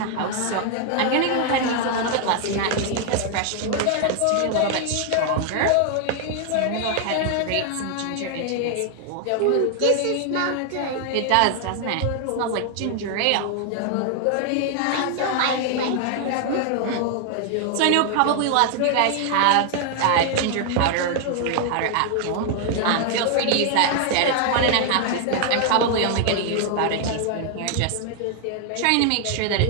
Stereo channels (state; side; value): different; both; correlation 0.00